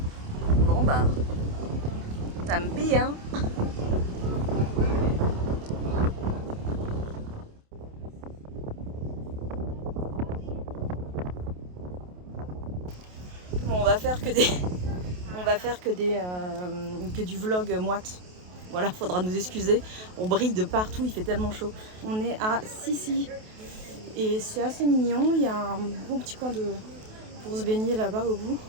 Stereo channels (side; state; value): left; late; 28 ms